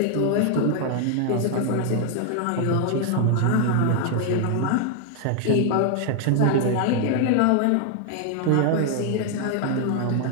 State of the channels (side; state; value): both; different; correlation 0.00